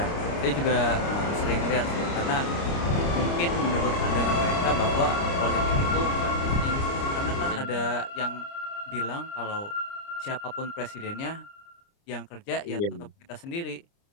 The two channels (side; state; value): right; late; 29 ms